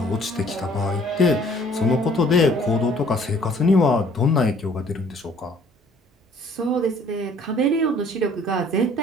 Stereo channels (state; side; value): normal; both; correlation 0.57